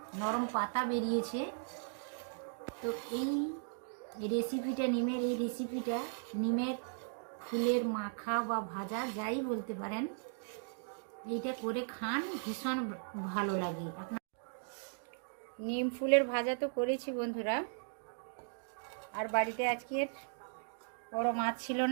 নরম পাতা বেরিয়েছে। তো এই রেসিপিটা, নিমের এই রেসিপিটা, নিমের ফুলের মাখা বা ভাজা যাই বলতে পারেন, এইটা করে খান, ভীষণ ভালো লাগে। আপনার নিম ফুলের ভাজা তো করেছি বন্ধুরা। আর বাড়িতে আজকের বড় মাছ ছিল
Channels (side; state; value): left; silent; digital silence